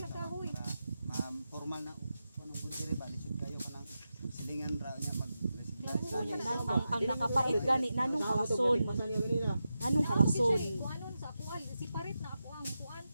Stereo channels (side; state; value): both; inverted; correlation -0.90